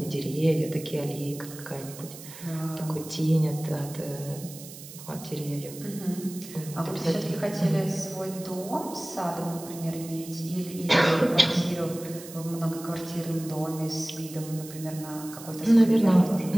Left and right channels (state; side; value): noise; right; hiss, 15 dB below the sound